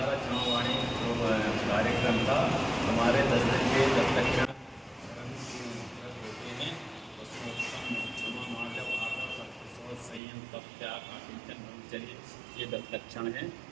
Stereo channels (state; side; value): drops out; left; at 10.2 s